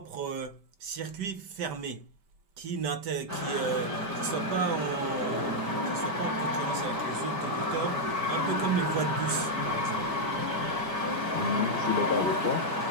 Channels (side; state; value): left; late; 5.1 ms